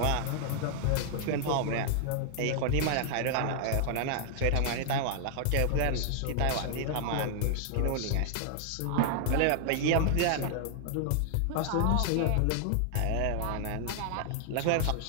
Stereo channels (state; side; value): different; both; correlation -0.01